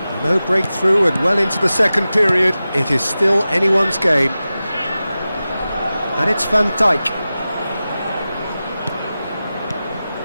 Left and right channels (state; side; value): inverted; both; correlation -0.94